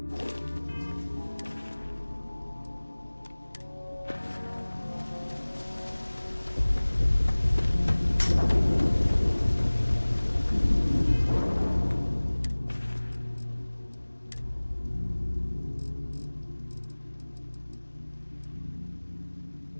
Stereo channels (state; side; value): inverted; both; correlation -1.00